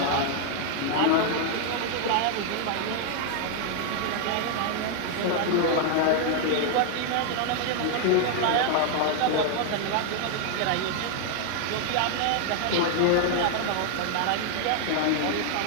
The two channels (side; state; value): both; different; correlation 0.00